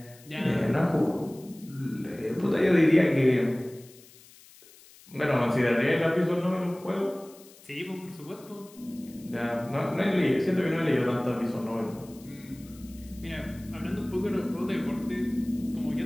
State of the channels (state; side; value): noise; left; hiss, 23 dB below the sound